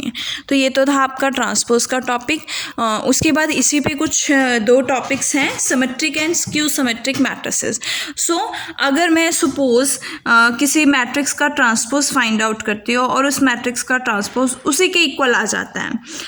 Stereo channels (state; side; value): identical; both; correlation 1.00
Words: तो ये तो था आपका ट्रांसपोज का टॉपिक। उसके बाद इसी पे कुछ दो टॉपिक्स हैं, symmetric and skew symmetric matrices. So अगर मैं सपोज किसी मैट्रिक्स का ट्रांसपोज फाइंड आउट करती हूँ और उस मैट्रिक्स का ट्रांसपोज उसी के इक्वल आ जाता है,